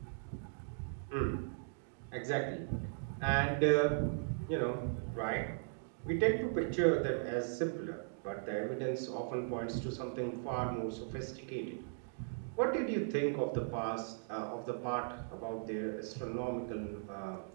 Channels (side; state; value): left; silent; digital silence